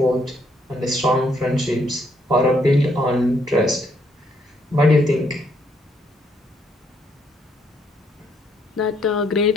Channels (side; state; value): both; normal; correlation 0.71